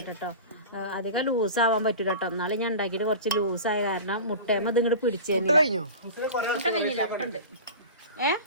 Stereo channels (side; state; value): both; inverted; correlation -0.33